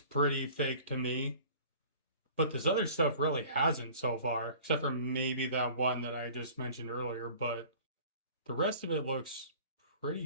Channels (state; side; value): inverted; both; correlation -0.46